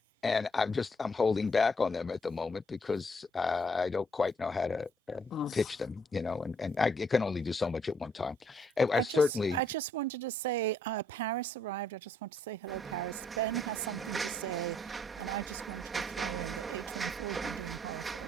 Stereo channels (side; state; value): both; normal; correlation 0.68